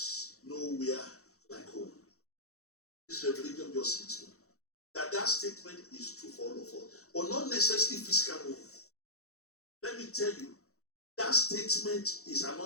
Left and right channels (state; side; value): late; right; 0.64 ms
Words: nowhere like home. This revelation just hit me. That statement is true for all of us, but not necessarily physical home. Let me tell you, that statement is